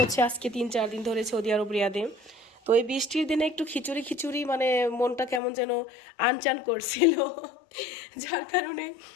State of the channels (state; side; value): drops out; right; at 5.4 s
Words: আজকে 3-4 দিন ধরে সৌদি আরব রিয়াদে। তো এই বৃষ্টির দিনে একটু খিচুড়ি খিচুড়ি মানে মনটা কেমন যেন আনচান করছিল। যার কারণে